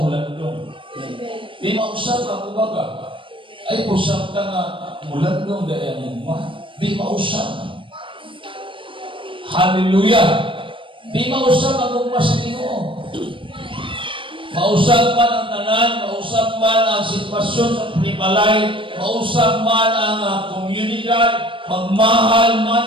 Di mausap ka kumbaga. Ay usap ka nga mulandong dahil ang gugma. Di mausap. Hallelujah! Di mausap ang gugma sa Ginoo. Mausap man ang tanan, mausap man ang sitwasyon sa panimalay, mausap man ang komunidad, magmahal man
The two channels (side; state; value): left; late; 0.25 ms